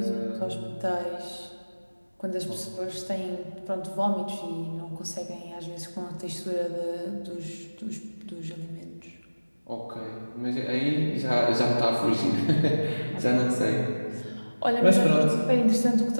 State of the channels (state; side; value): inverted; both; correlation -1.00